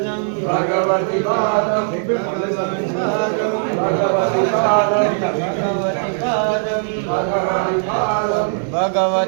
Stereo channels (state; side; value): silent; left; digital silence